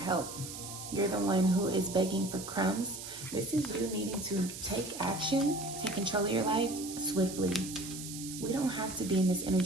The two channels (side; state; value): right; noise; hiss, 10 dB below the sound